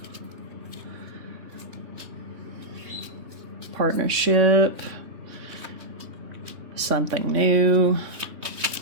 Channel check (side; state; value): left; late; 3.6 ms